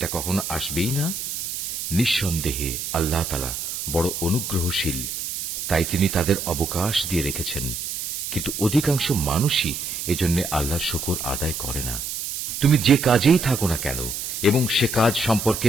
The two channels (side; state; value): right; noise; hiss, 5 dB below the sound